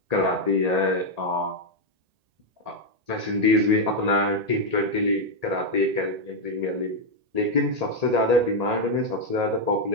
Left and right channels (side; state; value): left; late; 1.8 ms